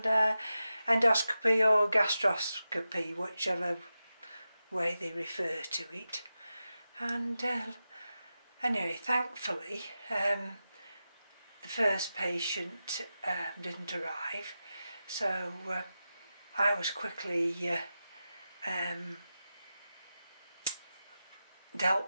endoscopy or gastroscopy, whichever way they refer to it. And anyway, thankfully the first patient didn't arrive, so I was quickly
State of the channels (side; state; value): both; inverted; correlation -0.92